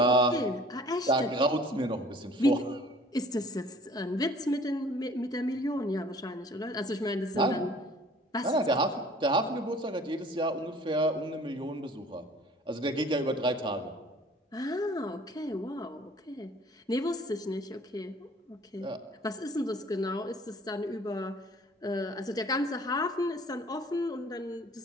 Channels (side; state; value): both; normal; correlation 0.51